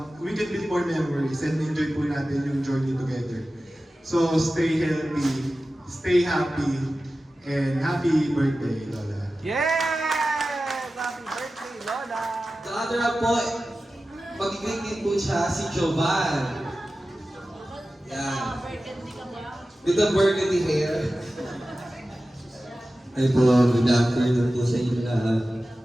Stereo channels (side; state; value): both; normal; correlation 0.95